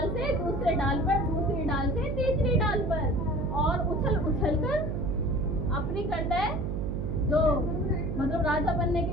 से दूसरे डाल पर, दूसरी डाल से तीसरी डाल पर, और उछल उछल कर अपनी करता है, जो मतलब राजा बनने के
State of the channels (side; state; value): right; noise; hum, 1 dB below the sound